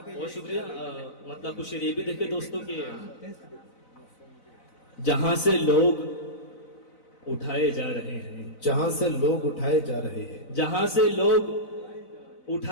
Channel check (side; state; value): right; late; 4.0 ms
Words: बहुत शुक्रिया। मतलब कुछ ये भी देखे दोस्तों के जहां से लोग उठाए जा रहे हैं, जहां से लोग उठाए जा रहे हैं, जहां से लोग